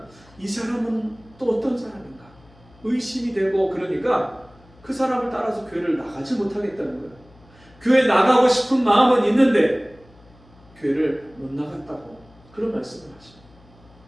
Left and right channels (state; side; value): noise; left; hum, 27 dB below the sound